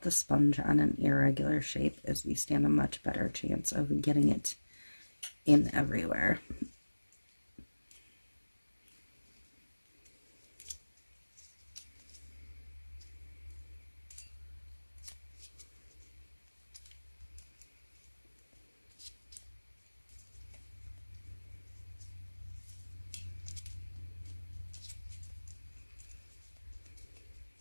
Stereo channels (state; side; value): inverted; both; correlation -1.00